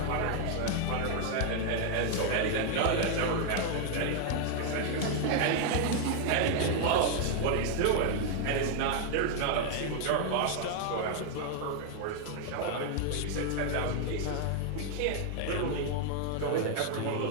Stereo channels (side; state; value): both; different; correlation 0.00